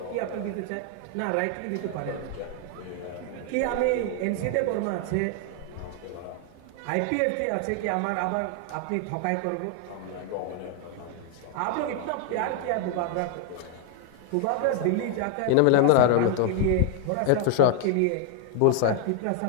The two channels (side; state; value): both; different; correlation 0.00